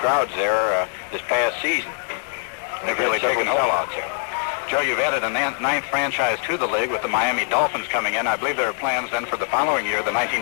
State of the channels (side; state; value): right; silent; digital silence